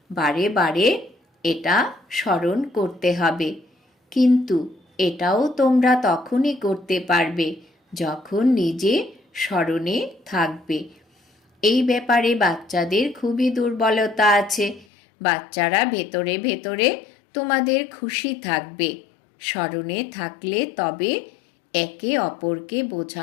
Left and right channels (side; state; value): right; drops out; at 14.9 s